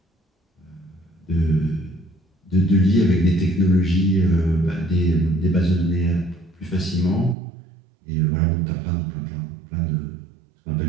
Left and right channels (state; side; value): drops out; left; at 7.4 s